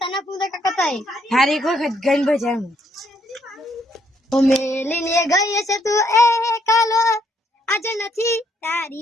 પૂંતા કાકા તાઈ હારી એક વખત ગન બજાવું ઓ મેલીને ગઈ છે તું એ કાલો આજે નથી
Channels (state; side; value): normal; both; correlation 0.72